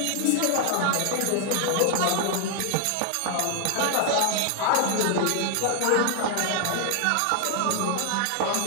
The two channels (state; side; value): different; both; correlation 0.00